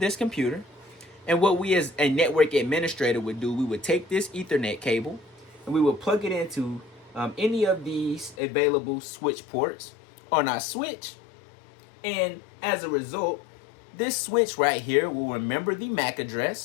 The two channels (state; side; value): drops out; right; at 8.3 s